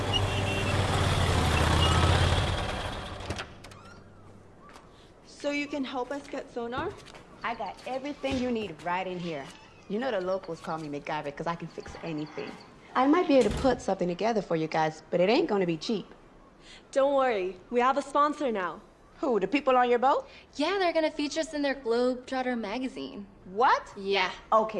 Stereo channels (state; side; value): identical; both; correlation 1.00